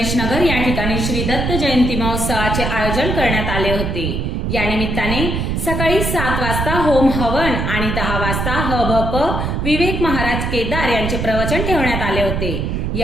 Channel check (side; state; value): right; noise; rumble, 1 dB below the sound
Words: नगर या ठिकाणी श्री दत्त जयंती महोत्सवाचे आयोजन करण्यात आले होते. या निमित्ताने सकाळी 7 वाजता होम हवन आणि 10 वाजता हभप विवेक महाराज केदार यांचे प्रवचन ठेवण्यात आले होते.